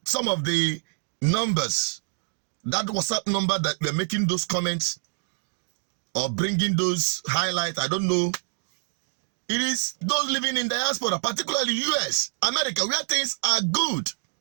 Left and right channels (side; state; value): left; silent; 61 dB below the other